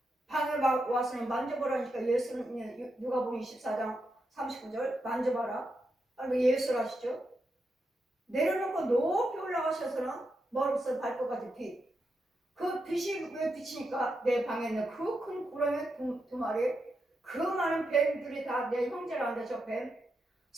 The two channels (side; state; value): both; normal; correlation 0.85